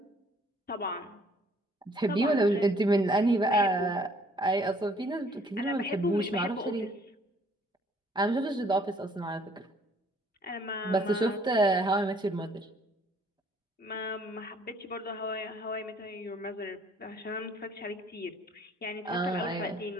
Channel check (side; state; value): both; normal; correlation 0.61